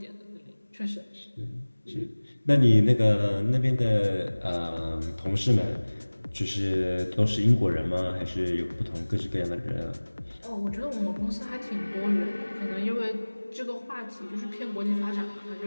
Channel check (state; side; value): inverted; both; correlation -1.00